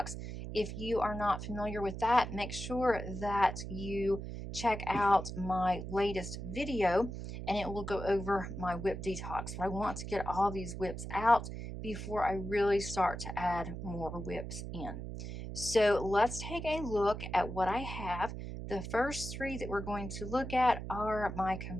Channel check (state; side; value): noise; right; hum, 7 dB below the sound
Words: If you are not familiar with that, make sure that you check out my latest video and it will go over my WIP detox. But I want to get all these WIPs out before I really start to add more WIPs in. So let's take a look at what I have. The first three that we're going to look at are my